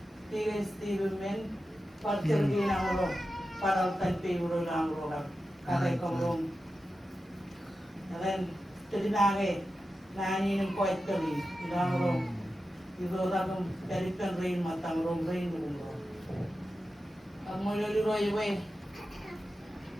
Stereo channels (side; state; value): both; normal; correlation 0.92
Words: tiga Steven parcergi namuro para tanpe uro namuro kare komrong dan jadi nani nem poet kali namuro itu orang dari penrain matang rom rain namuro kamu lagi roy we